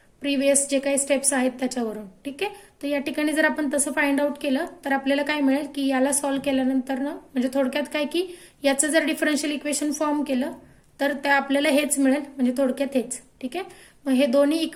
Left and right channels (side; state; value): both; identical; correlation 1.00